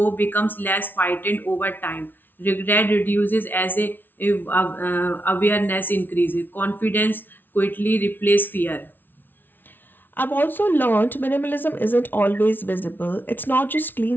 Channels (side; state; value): right; late; 0.093 ms